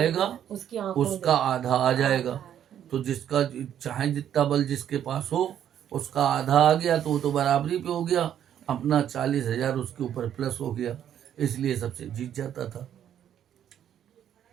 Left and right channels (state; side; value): quieter; left; 10.0 dB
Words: उसका आधा आ जाएगा। तो जिसका चाहे जितना बल जिसके पास हो उसका आधा आ गया तो वो तो बराबरी पे हो गया, अपना 40 हजार उसके ऊपर प्लस हो गया, इसलिए सबसे जीत जाता था।